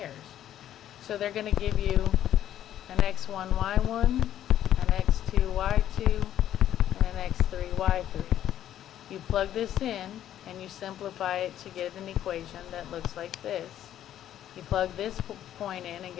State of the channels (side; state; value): right; quieter; 11.4 dB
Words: So they're going to give you an x1, y1, an x2, y2, and an x3, y3. You plug this in and you simplify it to get an equation that looks like this. You plug this point in and